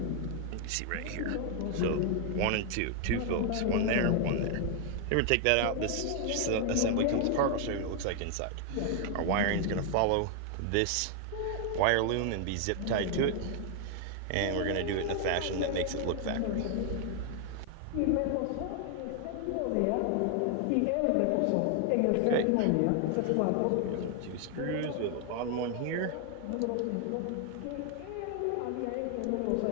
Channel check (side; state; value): both; different; correlation 0.00